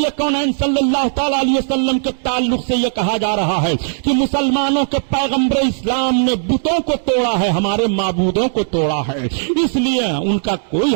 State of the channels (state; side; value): silent; left; digital silence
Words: کونین صلی اللہ تعالی علیہ وسلم کے تعلق سے یہ کہا جا رہا ہے کہ مسلمانوں کے پیغمبر اسلام نے بتوں کو توڑا ہے، ہمارے معبودوں کو توڑا ہے. اس لیے ان کا کوئی